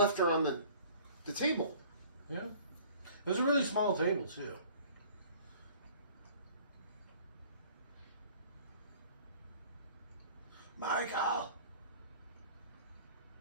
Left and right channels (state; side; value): inverted; both; correlation -0.50